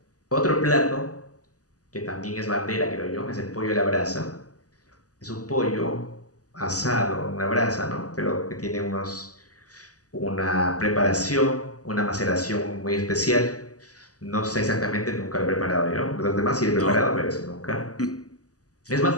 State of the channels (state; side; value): late; right; 0.67 ms